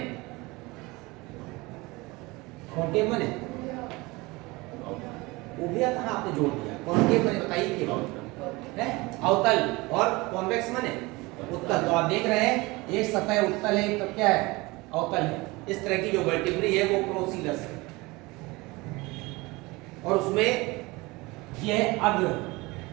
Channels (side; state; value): left; quieter; 23.1 dB